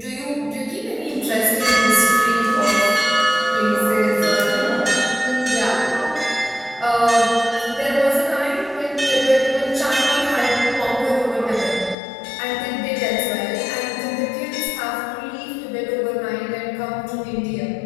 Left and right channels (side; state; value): right; drops out; at 12.0 s